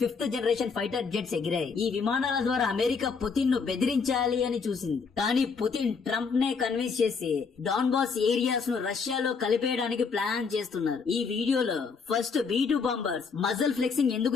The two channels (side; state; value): right; quieter; 5.3 dB